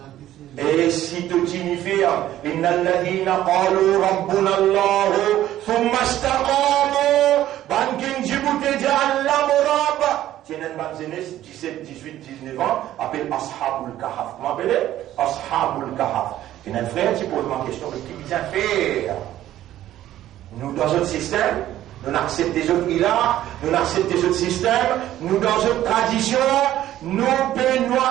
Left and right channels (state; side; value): quieter; left; 13.2 dB